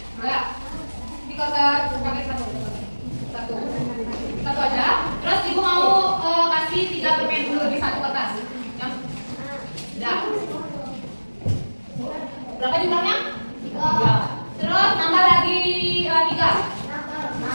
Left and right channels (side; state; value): both; inverted; correlation -1.00